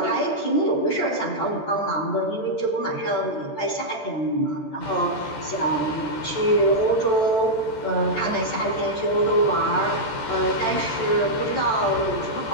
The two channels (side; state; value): right; late; 14 ms